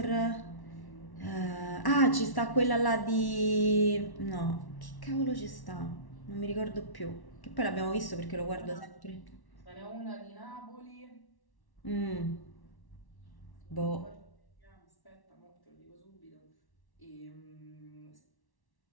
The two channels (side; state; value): right; late; 1.1 ms